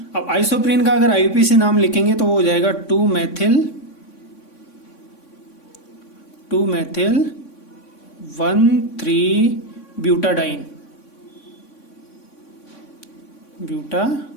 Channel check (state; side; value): late; right; 3.6 ms